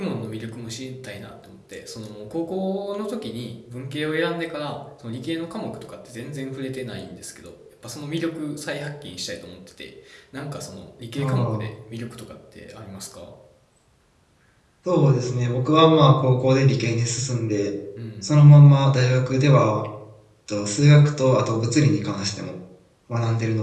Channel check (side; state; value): both; identical; correlation 1.00